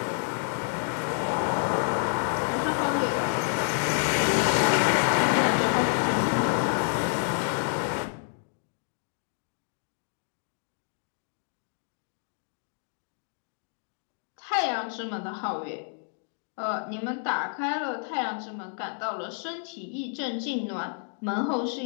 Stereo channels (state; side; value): silent; right; 59 dB below the other